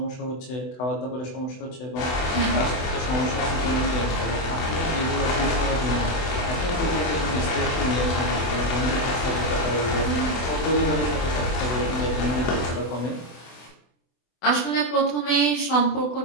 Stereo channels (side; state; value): right; late; 24 ms